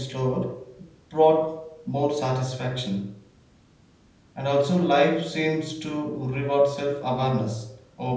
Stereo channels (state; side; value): identical; both; correlation 1.00